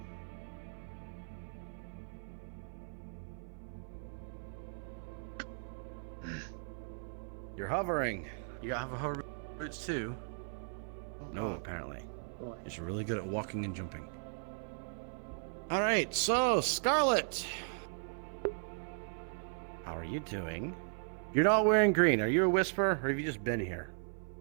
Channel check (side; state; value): left; silent; 53 dB below the other